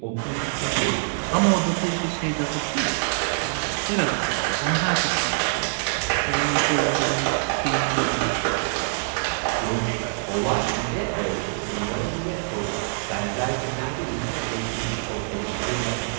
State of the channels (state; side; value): silent; left; digital silence